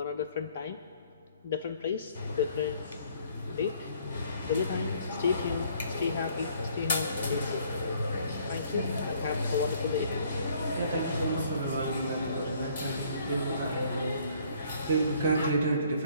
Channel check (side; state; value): both; inverted; correlation -0.61